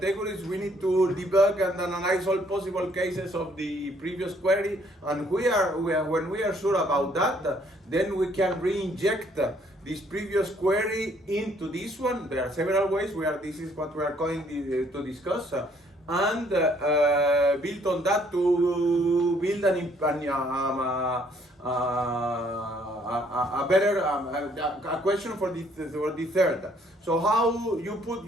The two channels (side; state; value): both; normal; correlation 0.65